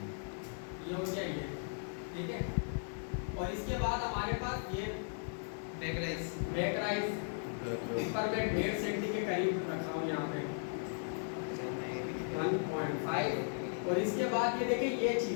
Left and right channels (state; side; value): silent; right; digital silence